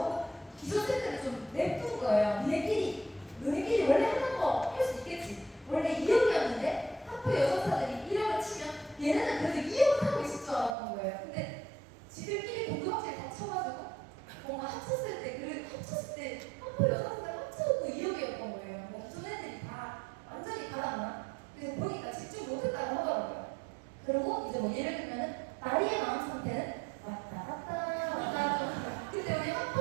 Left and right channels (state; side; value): drops out; left; at 10.8 s